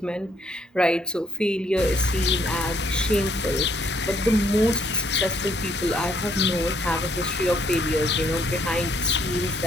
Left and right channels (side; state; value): both; normal; correlation 0.68